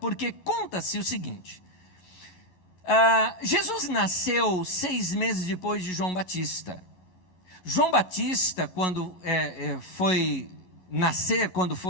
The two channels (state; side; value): late; right; 11 ms